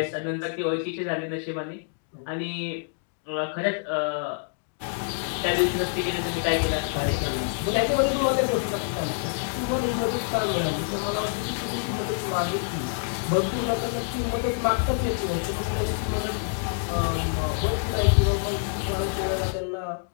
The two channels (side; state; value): right; silent; digital silence